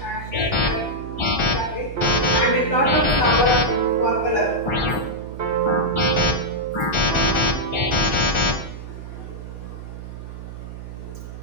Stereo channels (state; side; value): noise; right; hum, 11 dB below the sound